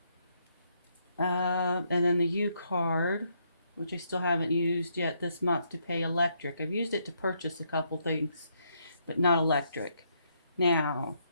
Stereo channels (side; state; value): both; inverted; correlation -0.74